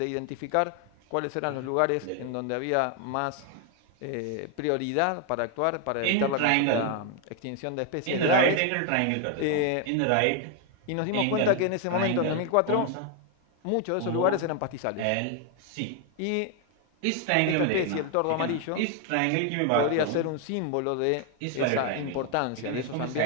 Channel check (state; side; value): different; both; correlation 0.00